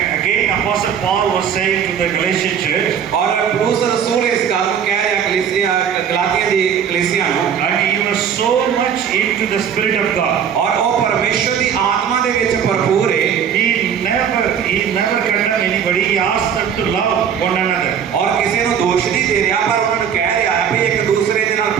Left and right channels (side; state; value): left; quieter; 8.1 dB